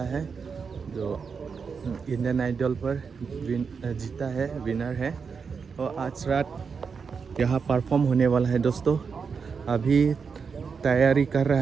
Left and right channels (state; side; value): quieter; left; 5.7 dB